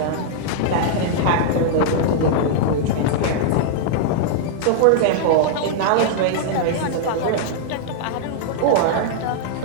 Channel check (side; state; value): both; different; correlation -0.01